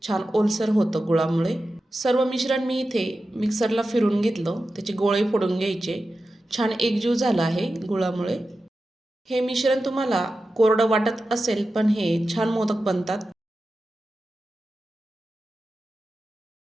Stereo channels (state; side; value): normal; both; correlation 0.92